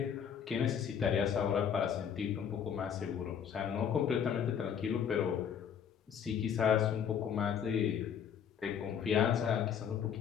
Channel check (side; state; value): right; quieter; 8.0 dB